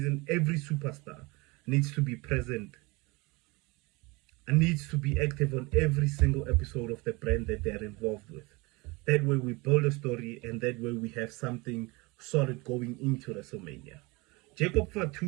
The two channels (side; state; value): left; quieter; 25.4 dB